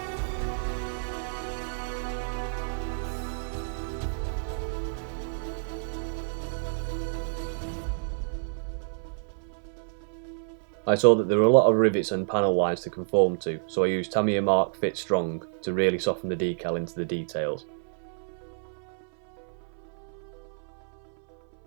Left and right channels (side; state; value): left; silent; 59 dB below the other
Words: I saw that there were a lot of rivets and panel lines to conform to, so I used Tamiya Mach Fit Strong to really soften the decal into the details.